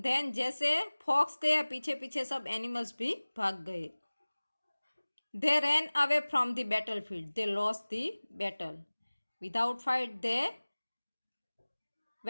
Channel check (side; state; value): both; inverted; correlation -1.00